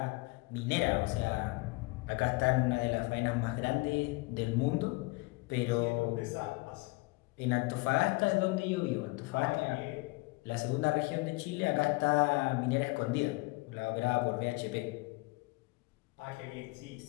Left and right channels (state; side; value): quieter; right; 24.8 dB